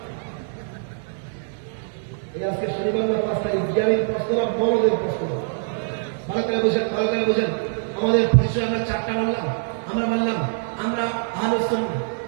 আজকে শনিবার না 5 তারিখ? জ্ঞানীর প্রশ্নটা বড়দের প্রশ্ন। ভালো করে বুঝেন। আমাদের পরিচয় আমরা 4টা বললাম। আমরা বললাম আমরা আহলুস সুন্নাহ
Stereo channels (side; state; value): left; silent; digital silence